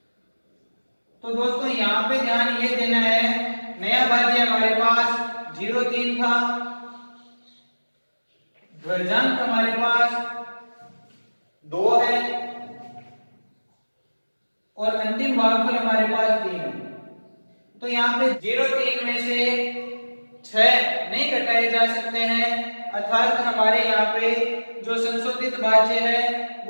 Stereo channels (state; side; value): inverted; both; correlation -1.00